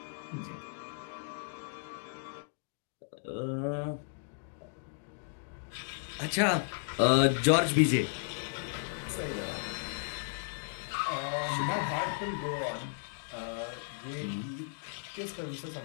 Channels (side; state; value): right; silent; digital silence